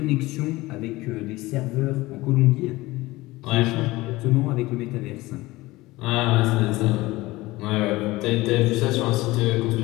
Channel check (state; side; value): quieter; right; 19.7 dB